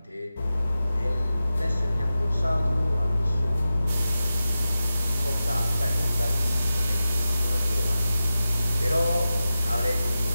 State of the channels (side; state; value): both; inverted; correlation -0.93